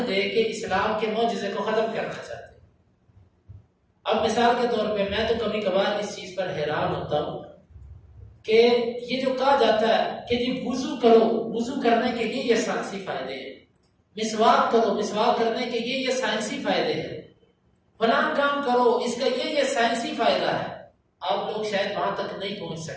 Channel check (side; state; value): both; identical; correlation 1.00